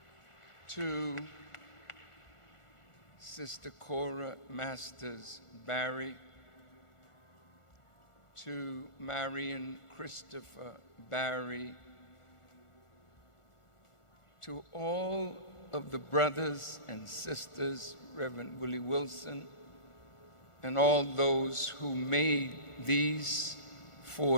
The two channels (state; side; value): late; right; 1.4 ms